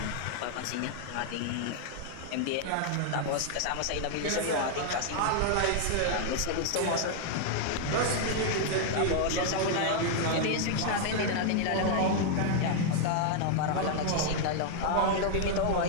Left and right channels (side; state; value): both; different; correlation 0.00